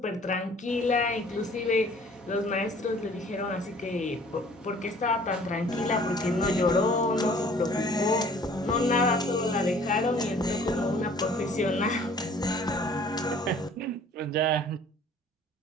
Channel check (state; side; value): normal; both; correlation 0.53